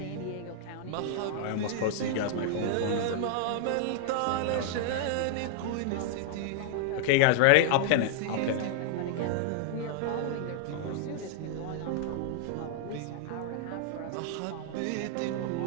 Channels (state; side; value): different; both; correlation -0.01